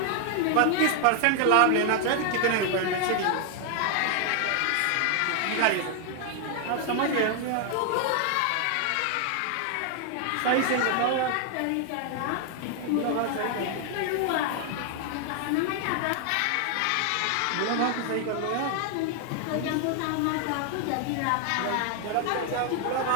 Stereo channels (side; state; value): both; different; correlation 0.00